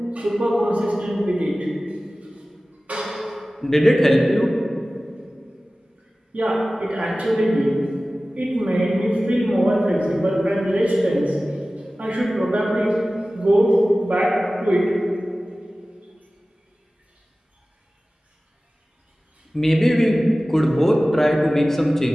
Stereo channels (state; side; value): normal; both; correlation 0.97